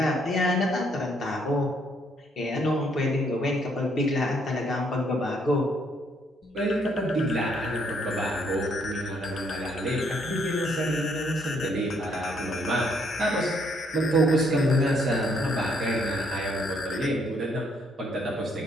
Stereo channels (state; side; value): normal; both; correlation 0.70